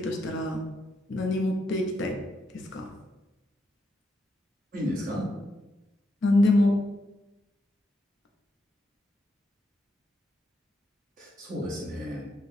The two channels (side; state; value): both; normal; correlation 0.81